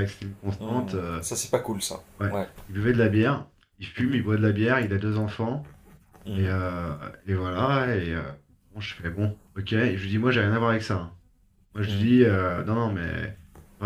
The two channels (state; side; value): identical; both; correlation 1.00